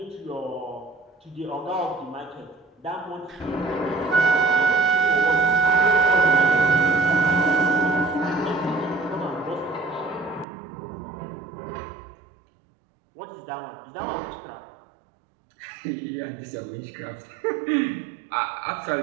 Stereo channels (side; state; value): left; drops out; at 10.5 s